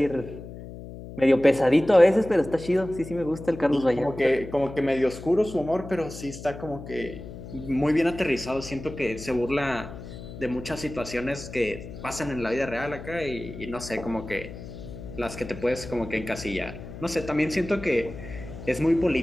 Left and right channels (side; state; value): left; noise; hum, 12 dB below the sound